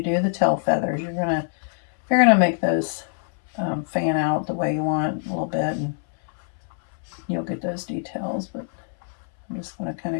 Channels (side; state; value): right; silent; 62 dB below the other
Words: do the tail feathers, you're gonna make those fan out the way you want a little bit, and you'll get those details. But I'm just gonna kind